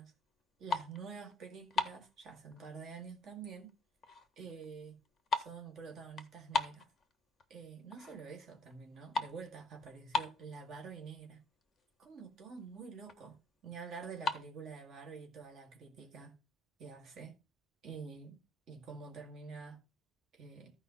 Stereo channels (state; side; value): normal; both; correlation 0.64